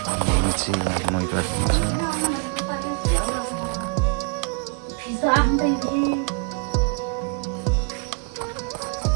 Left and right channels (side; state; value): left; quieter; 36.0 dB